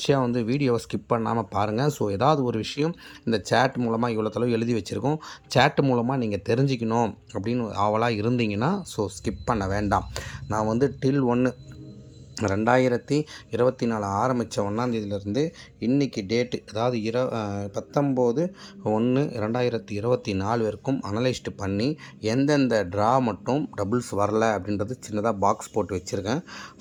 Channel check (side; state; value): both; identical; correlation 1.00